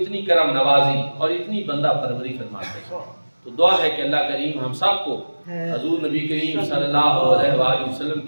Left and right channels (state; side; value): inverted; both; correlation -1.00